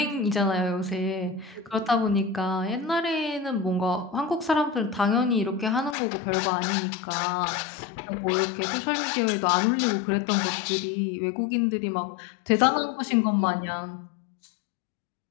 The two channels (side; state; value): right; drops out; at 6.0 s